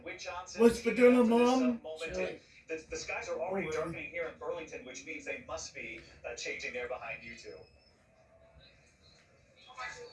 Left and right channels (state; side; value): identical; both; correlation 1.00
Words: Wick Johnson. What's for dinner, Mom? The skies are already darkening here in Burlington, which means they must be changing there behind you two.